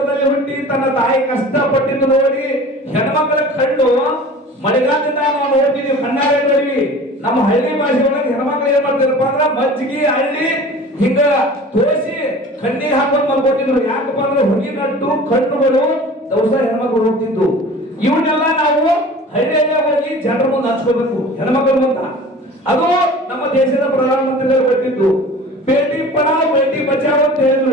ಹುಟ್ಟಿ ತನ್ನ ತಾಯಿ ಕಷ್ಟಪಟ್ಟಿದ್ದು ನೋಡಿ ಹೆಣ್ಮಕ್ಳ ಕಣ್ಣು ಮಳೆಗಾಲದಿಂದ ನಾವು ನೋಡ್ತಿದೀವಿ, ಕಣ್ಣಾರೆ ನೋಡಿವಿ. ನಮ್ಮ ಹಳ್ಳಿ ಭಾಷೆ ಒಳಗೆ ಹೆಣ್ಮಕ್ಳು ಏನ್ ಮಾಡ್ತಿರಪ್ಪ ಅಂದ್ರ ಮಜ್ಜಿಗೆ ಹಳ್ಳಿ ಹಿಂಗ ತೋರಿಸಿ ಕಣ್ಣೀರ್ ಹಾಕೊಂಡು ಮಲ್ಕೊತಿದ್ರು. ಯಾಕಪ್ಪ ಅಂದ್ರೆ ಹೊಗಿನಟ್ಟು ಕಣ್ಣುಗಳು ದವಸ ಹೆಣ್ಮಕ್ಳು ಹೋಗ್ತಿದ್ದು. ಇವನ್ನೆಲ್ಲ ನಾವು ಹಳ್ಳಿಯಲ್ಲೇ ಹೋಗಿ ಜನರ ಮುಂದೆ ಹಚ್ಕೋಬೇಕು, ಹೆಣ್ಮಕ್ಳ ಮುಂದ. ಅದು ನಮ್ಮ ದೇಶದ ಪ್ರಧಾನಮಂತ್ರಿಗಳು ಕೊಟ್ಟಿದ್ದು. ಬೇಟಿ ಪಢಾವ್ ಬೇಟಿ ಬಚಾವ್ ಅಂತ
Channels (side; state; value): both; normal; correlation 0.41